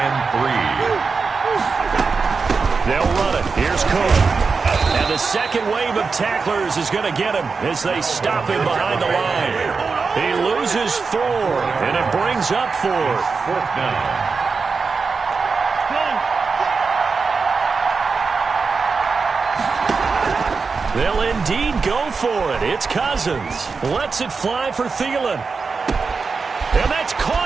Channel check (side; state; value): left; quieter; 4.8 dB